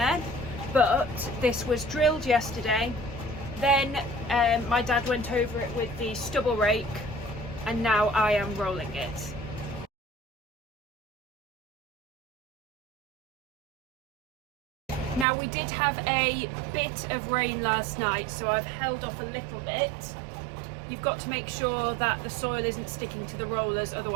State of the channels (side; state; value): left; drops out; at 15.2 s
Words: But this was drilled yesterday, then my dad went over it with the stubble rake, and now I am rolling it. Now we did have a bit of rain last night, so I've held off a little bit. You've got to make sure that the soil isn't sticking to the rollers,